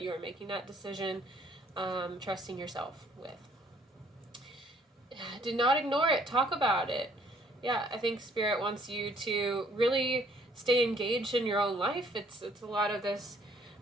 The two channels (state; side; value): normal; both; correlation 0.62